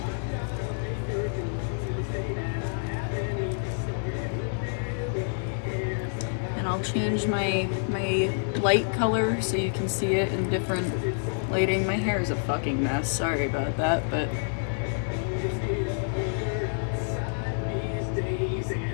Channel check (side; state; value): right; silent; 59 dB below the other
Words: I'll change my light color so you can see it in different lighting. My hair is a fucking mess. Sorry about that, but